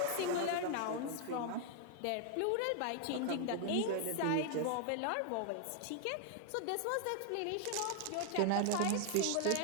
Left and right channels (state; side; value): different; both; correlation 0.00